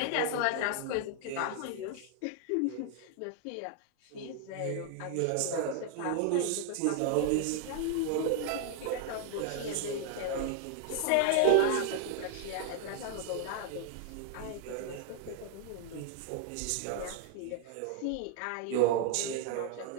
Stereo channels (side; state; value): both; different; correlation 0.00